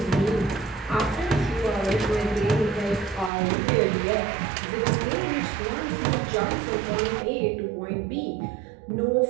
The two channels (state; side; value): drops out; left; at 3.3 s